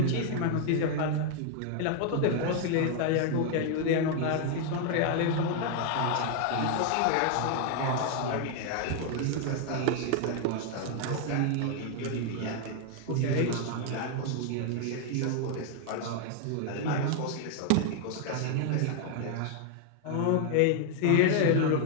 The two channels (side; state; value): both; different; correlation 0.00